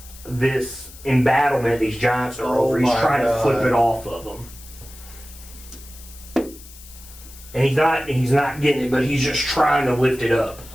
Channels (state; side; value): noise; left; hiss, 19 dB below the sound